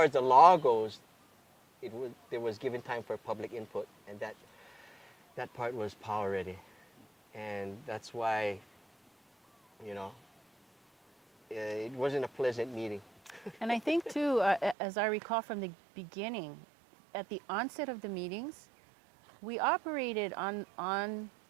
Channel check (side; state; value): left; drops out; at 14.8 s